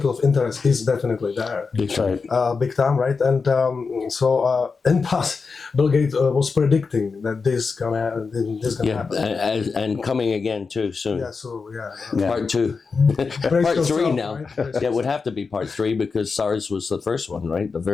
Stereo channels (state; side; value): quieter; right; 4.8 dB